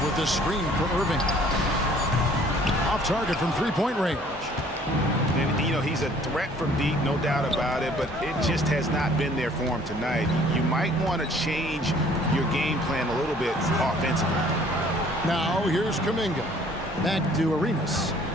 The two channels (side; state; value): both; normal; correlation 0.56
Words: with the screen for Irving. Off target from 3-point range. And, you know, he's a threat from deep, no doubt about it, but it just has not been there for him tonight. You might want to change your game plan a little bit offensively. Now here's Kuminga. Back to Arenas.